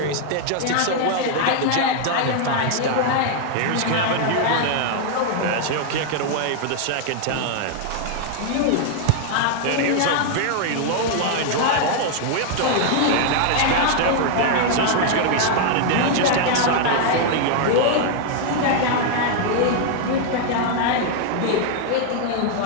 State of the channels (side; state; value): both; different; correlation 0.00